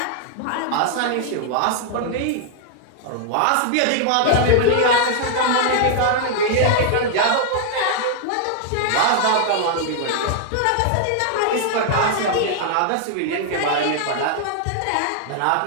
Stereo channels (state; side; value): different; both; correlation 0.00